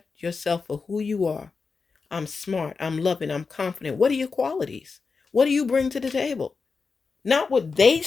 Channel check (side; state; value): right; quieter; 4.8 dB